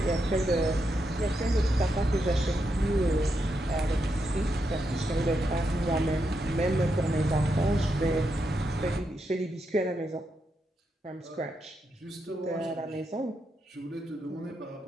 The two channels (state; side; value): normal; both; correlation 0.83